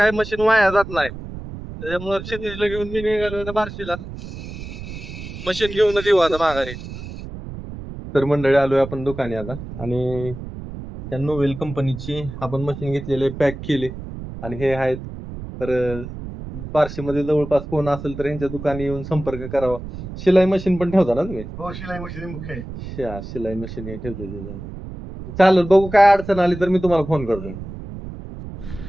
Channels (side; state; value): right; noise; rumble, 11 dB below the sound